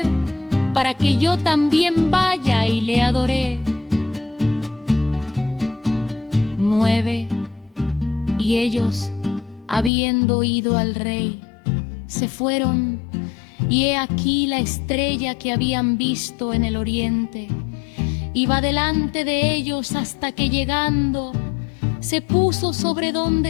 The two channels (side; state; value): right; drops out; at 9.9 s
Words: para que yo también vaya y le adoré. 9. Y ellos, habiendo ido al rey, se fueron, y he aquí la estrella que habían visto en el oriente iba delante de ellos, hasta que llegando se puso sobre